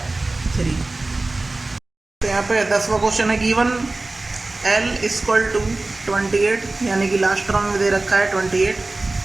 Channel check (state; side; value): quieter; left; 3.1 dB